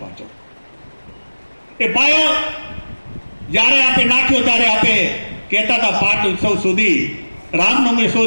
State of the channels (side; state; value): both; inverted; correlation -1.00